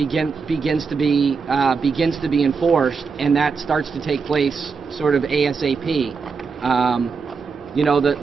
to be enforced, and that starts to take place sort of ASAP.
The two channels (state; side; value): quieter; left; 5.2 dB